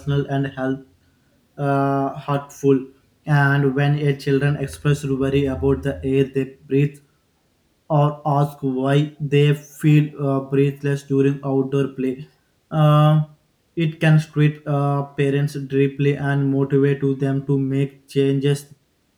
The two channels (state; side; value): identical; both; correlation 1.00